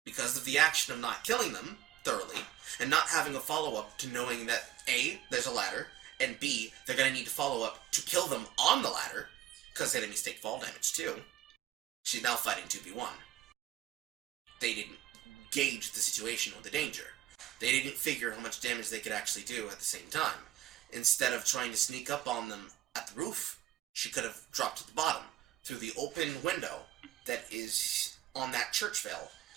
Because of the action of not killing them thoroughly, and not having a follow-up to knowing that A, there's a ladder, and B, they're going to need to follow up to kill them on the ladder, because enemies take fall damage too. She's now fighting 2v1. They didn't gauge the situation or the danger. They didn't figure how much damage they could actually do at the same time. Instead of trying to sneak up on them at the roof, she could have dropped at the bottom, through the open window that is on that church veil.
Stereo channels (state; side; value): quieter; left; 12.9 dB